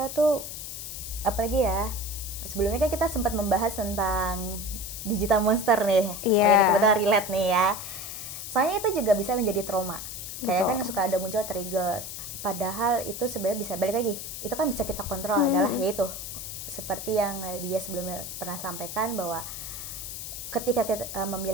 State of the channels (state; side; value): noise; left; hiss, 8 dB below the sound